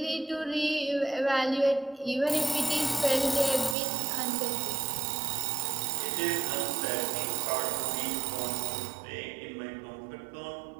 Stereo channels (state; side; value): drops out; left; at 3.8 s